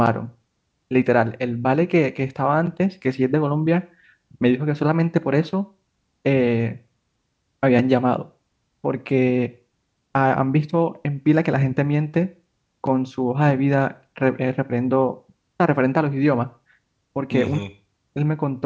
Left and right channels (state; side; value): identical; both; correlation 1.00